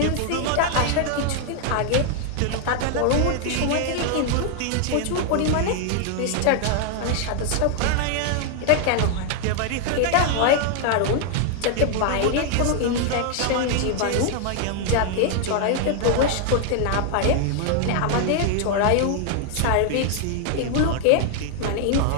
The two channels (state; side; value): different; both; correlation 0.00